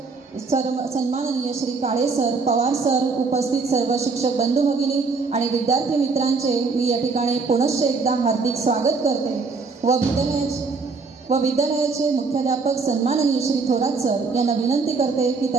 सन्माननीय श्री काळे सर, पवार सर, उपस्थित सर्व शिक्षक बंधू भगिनी आणि विद्यार्थी मित्रांचे मी या ठिकाणी पुनश्च एकदा हार्दिक स्वागत करते व विद्यालयाचे मुख्याध्यापक सन्माननीय श्री थोरात सर यांना विनंती करते की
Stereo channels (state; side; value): quieter; left; 4.4 dB